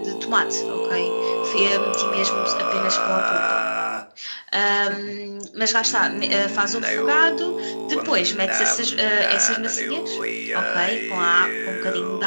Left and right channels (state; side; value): inverted; both; correlation -1.00